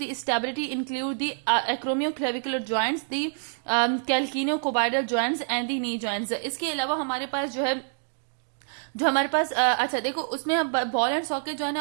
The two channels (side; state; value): left; silent; digital silence